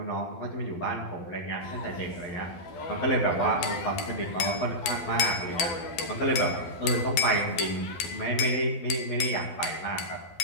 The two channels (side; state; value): right; late; 12 ms